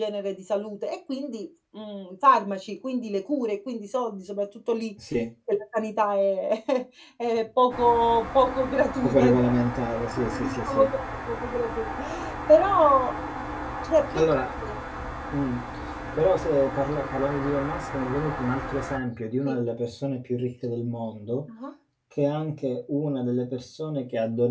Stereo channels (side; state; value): both; identical; correlation 1.00